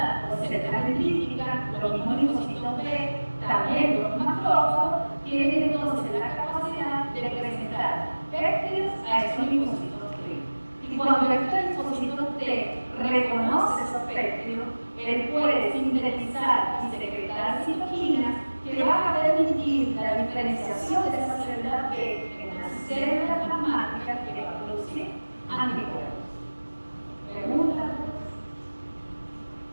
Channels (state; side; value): inverted; both; correlation -1.00